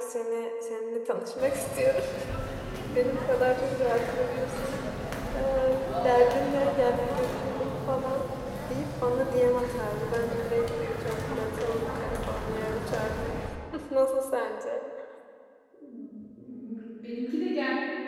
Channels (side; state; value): both; identical; correlation 1.00